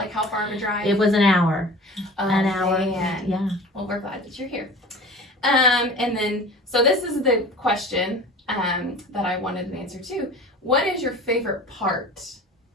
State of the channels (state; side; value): normal; both; correlation 0.40